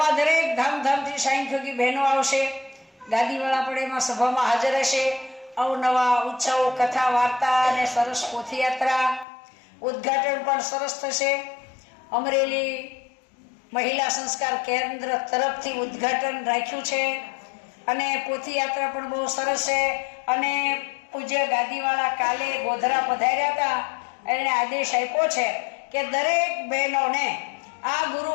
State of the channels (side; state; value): right; drops out; at 9.2 s